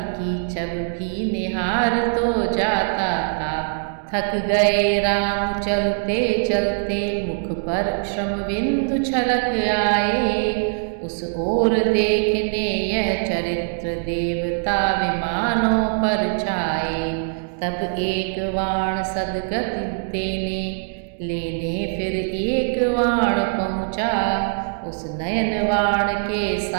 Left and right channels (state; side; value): silent; left; digital silence